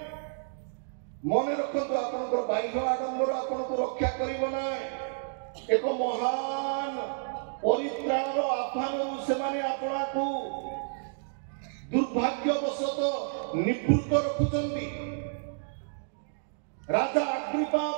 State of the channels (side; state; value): left; silent; digital silence